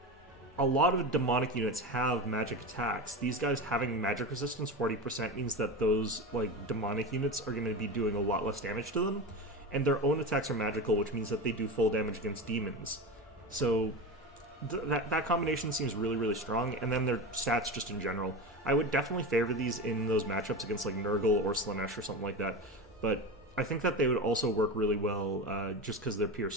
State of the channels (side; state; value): both; normal; correlation 0.24